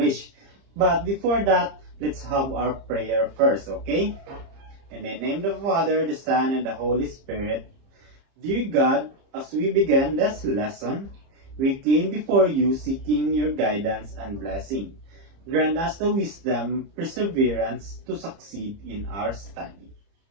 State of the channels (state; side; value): late; left; 30 ms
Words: But before that, let's have our prayer first, okay? In the name of the Father, the Son, and the Holy Spirit. Dear God, as we begin this lesson, we came before you seeking your guidance and blessing. Grant us the wisdom, perseverance to succeed in our study.